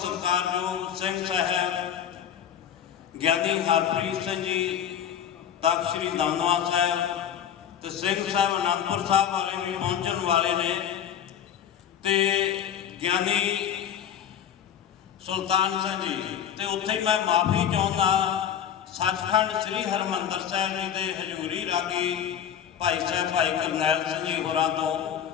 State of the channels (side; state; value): right; quieter; 9.2 dB